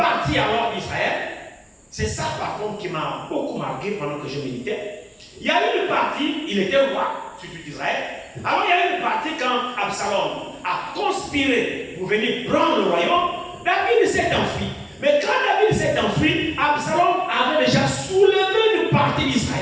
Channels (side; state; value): both; identical; correlation 1.00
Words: alors d'Israël. C'est ça par contre qui m'a beaucoup marqué pendant que je méditais. Il y a eu une partie, il était roi, surtout d'Israël. Alors il y a eu une partie quand Absalom a conspiré pour venir prendre le royaume. David s'est enfui. Mais quand David s'est enfui, Absalom avait déjà soulevé une partie